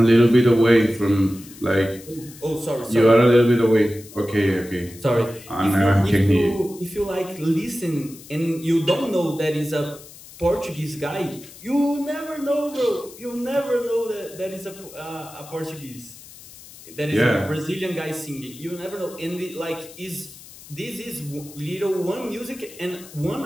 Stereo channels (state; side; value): noise; left; hiss, 19 dB below the sound